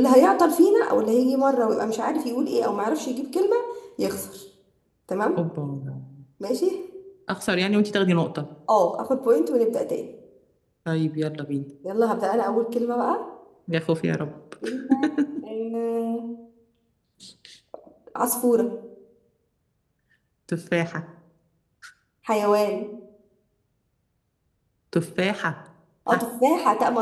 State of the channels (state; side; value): identical; both; correlation 1.00